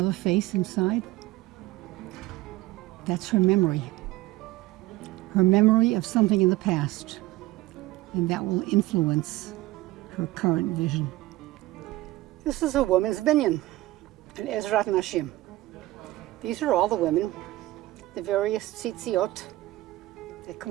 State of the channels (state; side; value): quieter; left; 17.8 dB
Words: face inside? That's her memory of something in the past, and that will influence her current vision. This is a woman's binyan, an Ezrat Nashim. These are all the women, the various tzitziot that